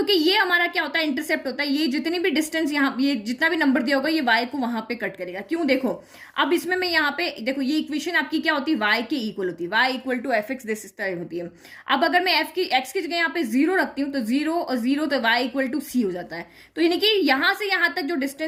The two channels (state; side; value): identical; both; correlation 1.00